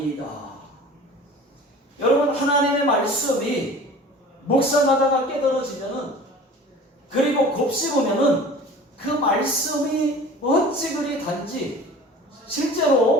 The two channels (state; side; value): normal; both; correlation 0.42